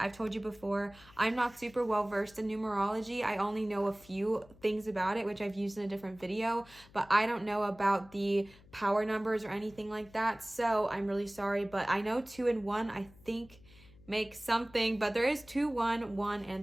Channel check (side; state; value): left; noise; hum, 24 dB below the sound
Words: told you before, I'm not super well versed in numerology. I only know a few things about it, which I've used in a different video, but I don't know about the power numbers or anything like that. So I'm really sorry, but I know 2 and 1, I think, make something, but there is 2, 1, 1,